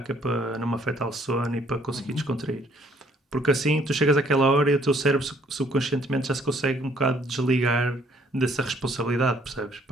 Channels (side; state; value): both; normal; correlation 0.64